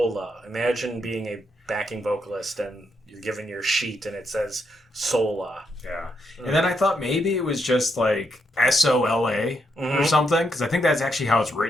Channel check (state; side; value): normal; both; correlation 0.79